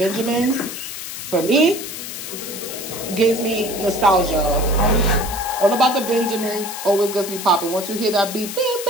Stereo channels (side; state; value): left; noise; hiss, 8 dB below the sound